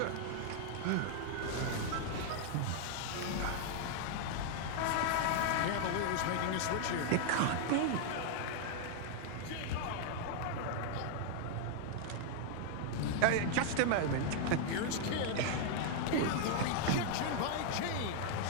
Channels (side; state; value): both; different; correlation 0.00